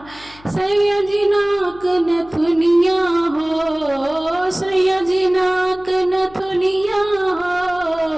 सैयदी नाक नथुनिया हो, सैयदी नाक नथुनिया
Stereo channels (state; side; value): noise; left; hum, 24 dB below the sound